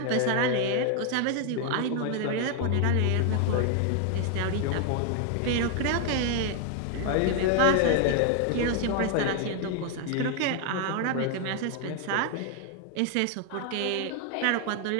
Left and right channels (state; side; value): different; both; correlation 0.00